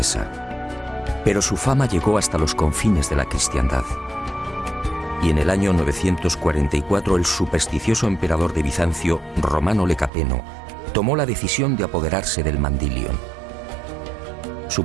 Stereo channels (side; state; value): left; drops out; at 10.1 s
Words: pero su fama llegó hasta los confines de la cristiandad. Y en el año 944 el supersticioso emperador de Bizancio, Romano Lecapeno, tomó la decisión de apoderarse del Mandilion.